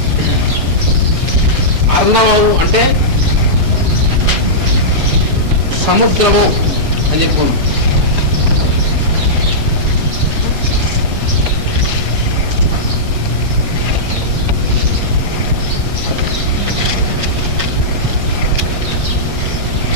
అర్ణవము అంటే సముద్రము అని చెప్పుకున్నాం.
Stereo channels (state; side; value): late; left; 7.2 ms